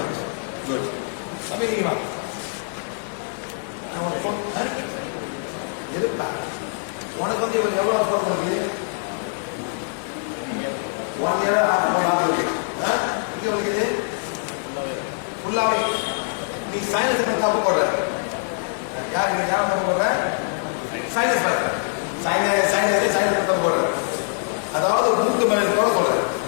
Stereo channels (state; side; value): silent; right; 56 dB below the other